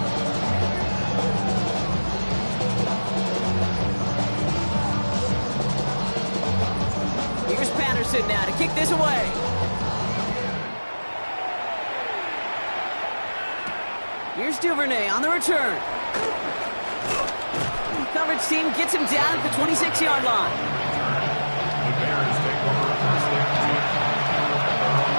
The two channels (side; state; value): both; inverted; correlation -1.00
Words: Here's Patterson now to kick this away. Here's Duvernay on the return. Coverage team gets him down at the 26-yard line. The Bears take over first and 10 at their own